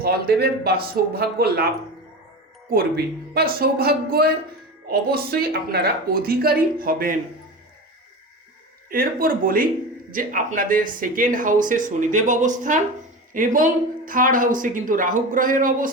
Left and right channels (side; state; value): both; normal; correlation 0.27